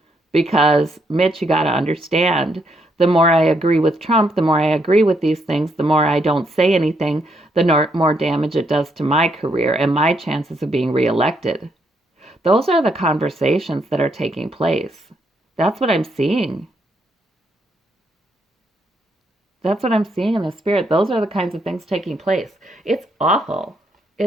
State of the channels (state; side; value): normal; both; correlation 0.75